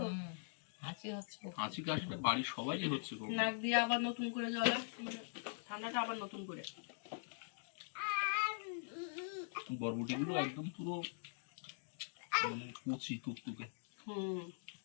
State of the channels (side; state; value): right; silent; digital silence